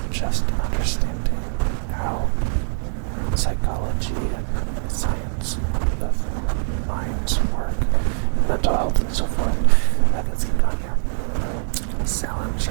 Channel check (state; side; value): silent; left; 61 dB below the other